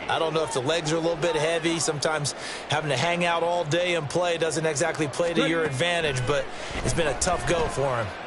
I don't know if the legs are a little bit heavy. Sometimes having to hang out all day and play doesn't exactly play to your advantage, but it's been a tough go for him.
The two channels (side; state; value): both; identical; correlation 1.00